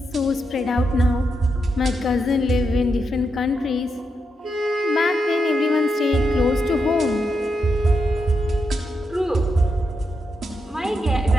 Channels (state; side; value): normal; both; correlation 0.84